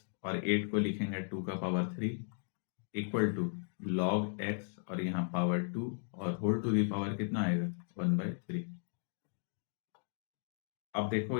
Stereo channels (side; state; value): right; silent; digital silence